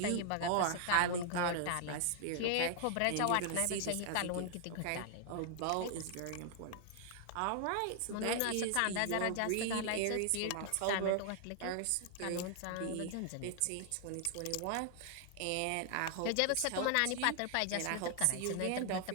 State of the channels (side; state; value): both; different; correlation 0.00